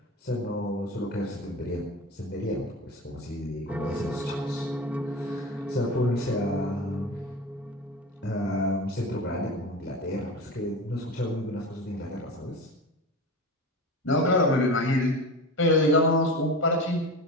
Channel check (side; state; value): both; normal; correlation 0.29